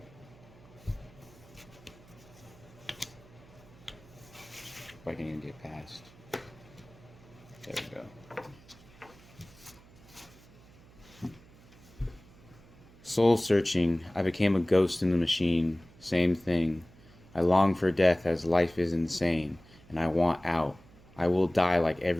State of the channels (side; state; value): right; noise; hum, 24 dB below the sound